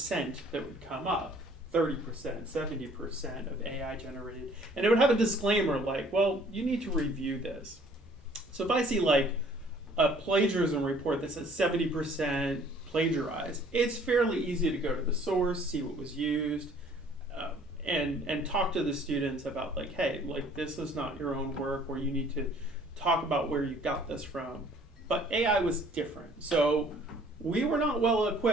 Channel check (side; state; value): both; normal; correlation 0.56